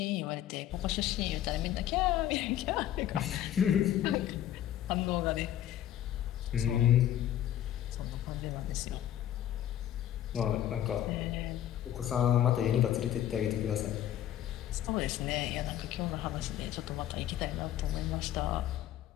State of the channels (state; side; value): quieter; right; 11.7 dB